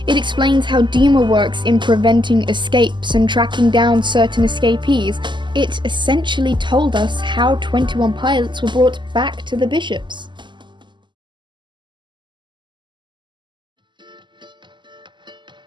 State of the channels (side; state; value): left; late; 0.22 ms